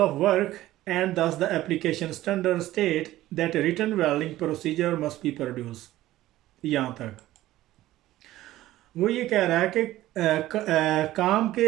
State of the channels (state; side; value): quieter; left; 15.3 dB